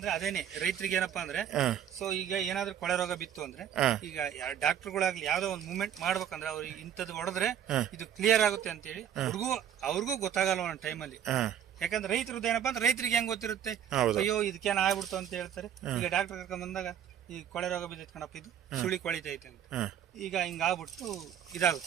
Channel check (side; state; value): left; quieter; 9.6 dB